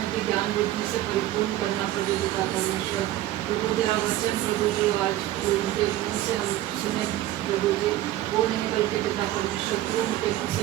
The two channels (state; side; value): quieter; left; 14.5 dB